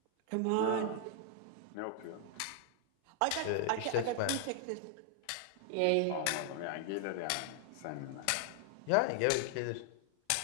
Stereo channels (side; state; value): both; different; correlation 0.00